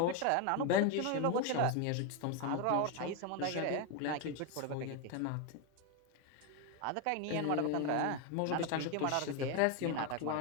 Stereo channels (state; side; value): different; both; correlation 0.02